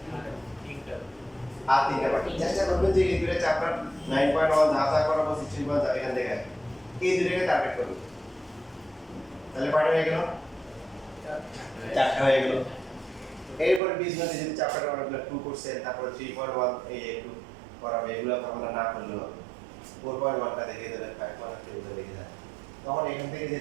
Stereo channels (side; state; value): left; drops out; at 13.8 s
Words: আর 3টা বাকি। চেষ্টা করবেন যে এই দুটো চ্যাপ্টার 9.1 যা করাবো 16.1 এখান থেকে এই দুটোকে টার্গেট করবেন। তাহলে কয়টা হয়ে গেল? 4টা হয়ে গেল। এরপরে বীজগণিত যদি চ্যাপ্টার অনেকগুলো 2 করছেন, তারপরে 3.1 এই যে একটু করাবে, এগুলো তো আমরা না করলেও হবে। 4.1টা দেখিয়ে দেবেন, 5.1টা দেখিয়ে দেবেন। তখন এখান থেকে যে